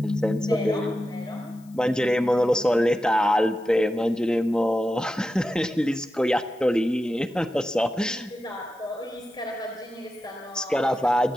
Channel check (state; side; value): noise; left; hiss, 29 dB below the sound